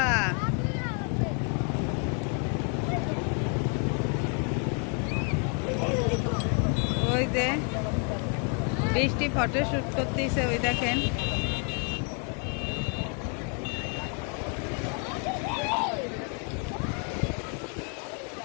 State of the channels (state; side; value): quieter; right; 38.4 dB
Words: ওই যে বৃষ্টি ফটো শুট করতেছে, ওই দেখেন।